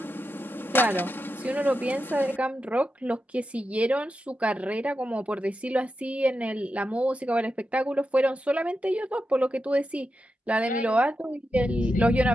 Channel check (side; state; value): both; normal; correlation 0.88